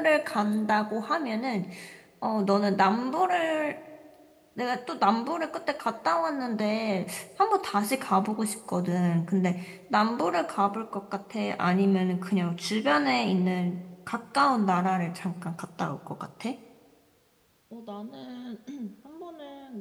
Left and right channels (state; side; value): identical; both; correlation 1.00